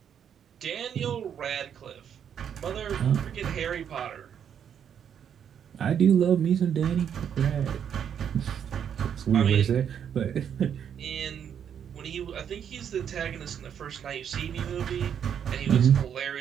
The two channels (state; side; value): quieter; left; 8.5 dB